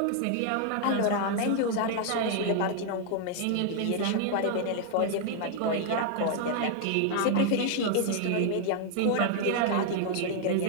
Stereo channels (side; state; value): both; different; correlation 0.00